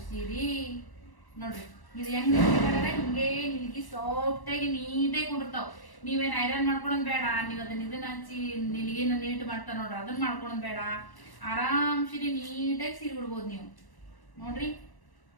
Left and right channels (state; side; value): late; right; 1.1 ms